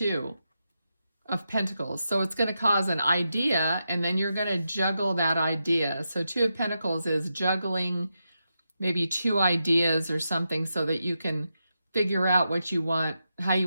of Pentacles. So it's going to cause an idea, and then you're going to juggle that idea. So 2 of Pentacles is juggling maybe 2 ideas or something so that you can figure out what you want, how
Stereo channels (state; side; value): inverted; both; correlation -0.87